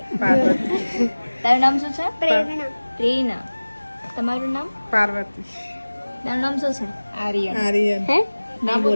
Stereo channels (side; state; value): both; inverted; correlation -1.00